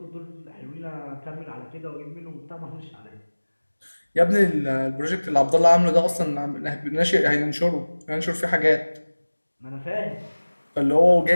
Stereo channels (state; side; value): inverted; both; correlation -1.00